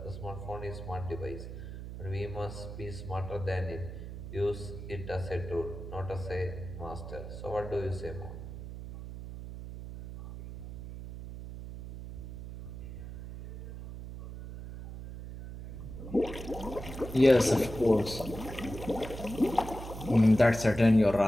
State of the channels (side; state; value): right; noise; hum, 10 dB below the sound